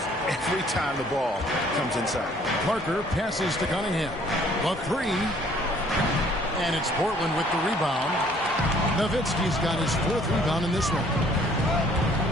every time the ball comes inside. Parker passes to Cunningham. The 3. And it's Portland with the rebound. Nowitzki's got his 4th rebound in this one.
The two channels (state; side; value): normal; both; correlation 0.59